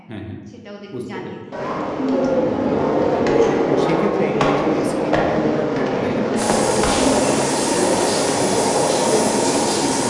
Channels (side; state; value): both; identical; correlation 1.00